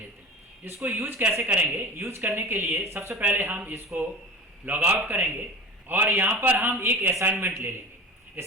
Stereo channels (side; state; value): both; normal; correlation 0.34